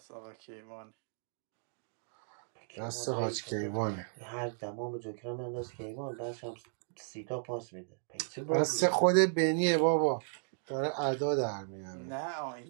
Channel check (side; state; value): left; silent; digital silence